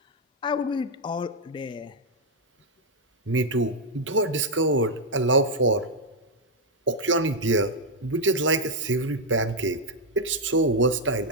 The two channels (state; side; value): normal; both; correlation -0.01